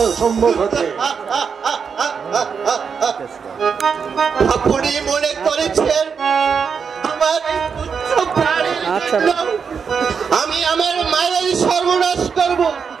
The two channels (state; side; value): quieter; left; 6.2 dB